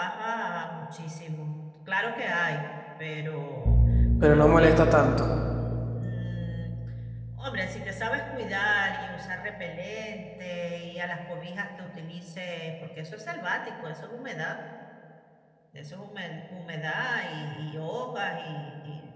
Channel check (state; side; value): identical; both; correlation 1.00